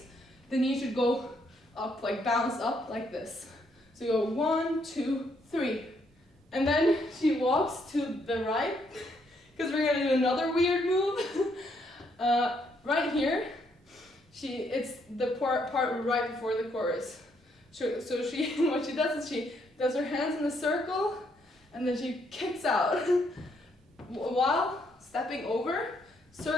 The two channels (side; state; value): both; normal; correlation 0.72